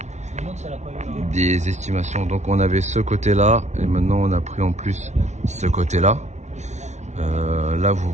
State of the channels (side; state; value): left; late; 0.33 ms